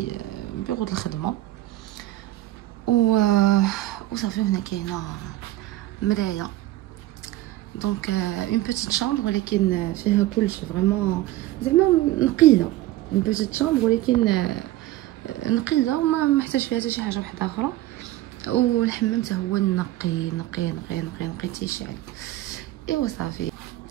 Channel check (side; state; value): left; quieter; 15.6 dB